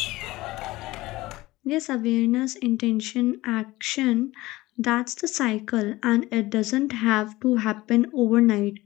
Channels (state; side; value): quieter; right; 18.8 dB